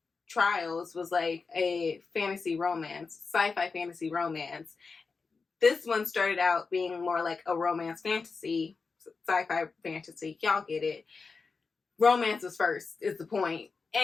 Trials was like a fantasy romance, sci-fi fantasy romance. This one started out being more like a romance fantasy, sci-fi fantasy. Y'all get it. Romance was first, is the point.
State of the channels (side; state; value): right; quieter; 4.6 dB